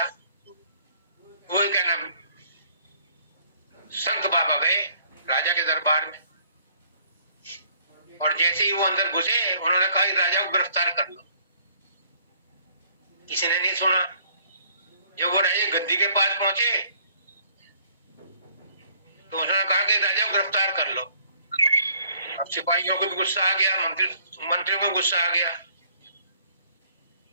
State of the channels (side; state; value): both; inverted; correlation -0.61